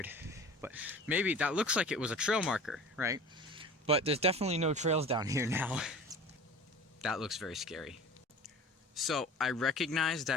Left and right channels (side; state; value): both; normal; correlation 0.39